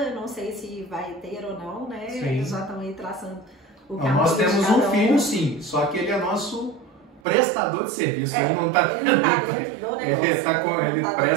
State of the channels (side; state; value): left; drops out; at 7.2 s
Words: não sei se vai ter ou não, né? Sim. Eles já estão aí traçando o caminho. Nós temos um filho, sim, só que ele é nosso prestador de serviço, ele não está dentro do negócio. Ele